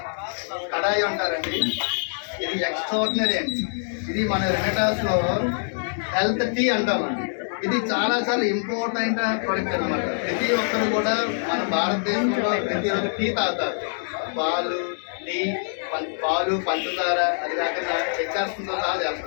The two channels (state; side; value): silent; right; digital silence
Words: కడాయి అంటారండి, ఇది ఎక్స్ట్రాడినరీ అండి. ఇది మన రెనటాస్ లో హెల్త్ టీ అంటామండి. ఇది చాలా చాలా ఇంపార్టెంట్ ప్రొడక్ట్ అనమాట. ప్రతి ఒక్కరు కూడా మన భారతదేశంలో ప్రతిరోజు టీ తాగుతారు. పాలు, టీ, పాలు, పంచదార, అది కాకుండా చక్కెరతో సహా